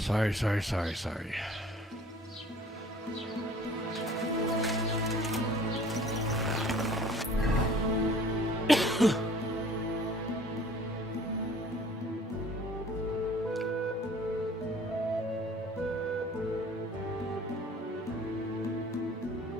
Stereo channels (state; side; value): normal; both; correlation 0.51